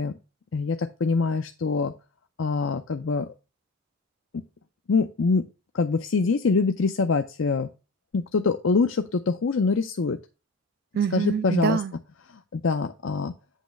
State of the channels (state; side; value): quieter; right; 3.0 dB